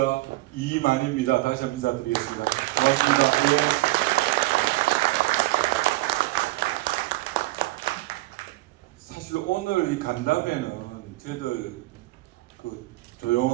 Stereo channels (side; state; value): left; quieter; 20.3 dB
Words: 이만희입니다. 다시 한번 인사드리겠습니다. 고맙습니다. 예. 사실 오늘 이 간담회는 저희들